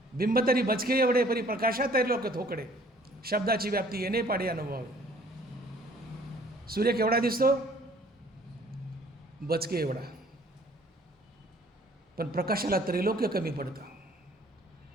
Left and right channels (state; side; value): normal; both; correlation 0.56